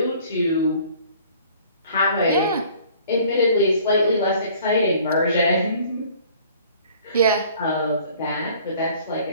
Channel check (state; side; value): inverted; both; correlation -0.53